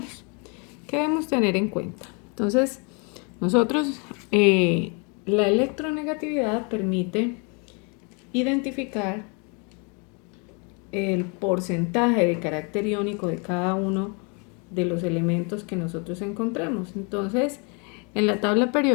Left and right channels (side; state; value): right; quieter; 34.3 dB